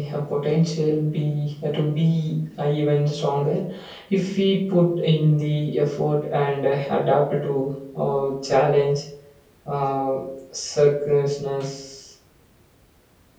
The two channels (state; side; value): identical; both; correlation 1.00